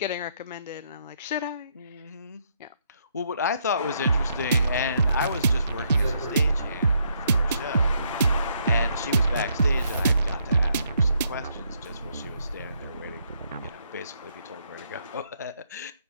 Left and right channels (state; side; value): inverted; both; correlation -0.73